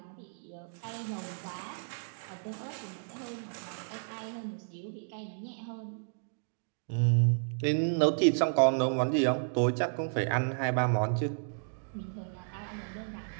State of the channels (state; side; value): silent; left; digital silence